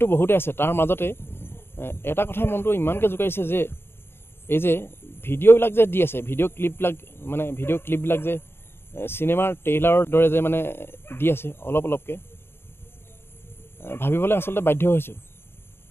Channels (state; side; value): late; right; 0.11 ms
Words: বহুতে আছে, তাৰ মাজতে এটা কথাই মনটো ইমানকৈ জোকাৰিছে যে এই যে ভিডিঅ'বিলাক যে দি আছে, ভিডিঅ' ক্লিপবিলাক যে চিনেমাৰ ট্ৰেইলাৰৰ দৰে যে মানে দি আছে অলপ অলপকৈ, ভাবিবলৈ আচলতে বাধ্য হৈছোঁ।